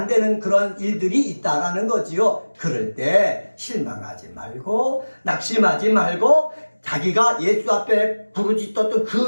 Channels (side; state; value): both; inverted; correlation -1.00